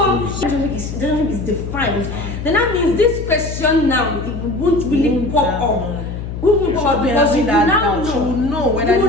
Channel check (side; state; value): left; noise; hum, 7 dB below the sound